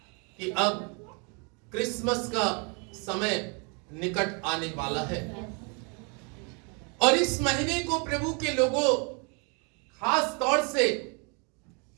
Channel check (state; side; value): quieter; left; 34.6 dB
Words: कि अब क्रिसमस का समय निकट आने वाला है, और इस महीने को प्रभु के लोगों, खास तौर से